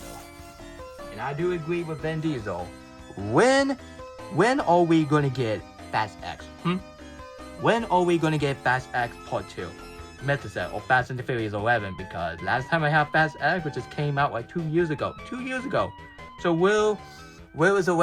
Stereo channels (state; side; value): identical; both; correlation 1.00